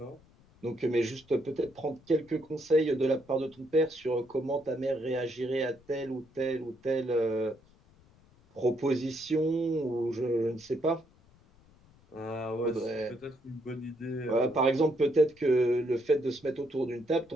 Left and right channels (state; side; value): noise; left; rumble, 28 dB below the sound